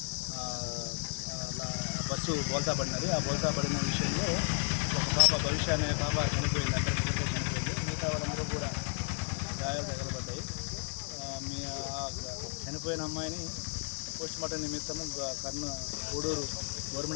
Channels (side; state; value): right; silent; 55 dB below the other